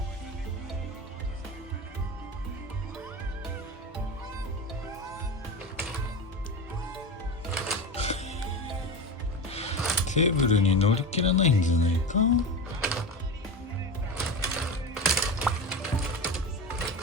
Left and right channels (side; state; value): both; normal; correlation 0.24